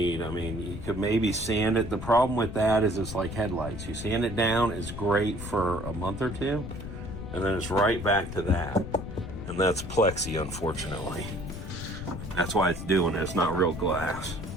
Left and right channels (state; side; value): noise; left; rumble, 9 dB below the sound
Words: I mean, you could maybe sand it. The problem with that is it's like headlights. You sand it down, it's great for a month or two, and then it's right back to that. And that's plexi, unfortunately. That's why it's doing it. It's not real glass.